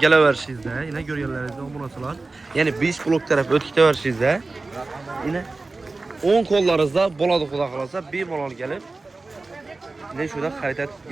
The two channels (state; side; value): quieter; left; 3.5 dB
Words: yine ko'rganlaringizda bo'lasalar, ya'ni 5 blok taraf o'tib ketaverishingizda, yine 10 qo'llaringizda bo'ladi xudo xolasa, bemalol kelib ne shunda xarid